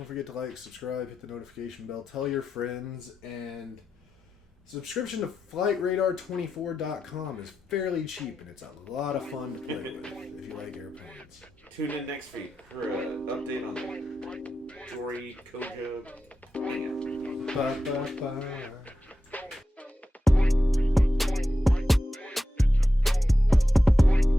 forget to like, subscribe, hit the notification bell, tell your friends, and subscription to FlightRadar24.com is fairly cheap, and it's a lot of fun to play with if you like airplanes. Tune in next week for an update on the Jory Koja. Bye, bye, bye.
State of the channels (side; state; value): both; normal; correlation 0.90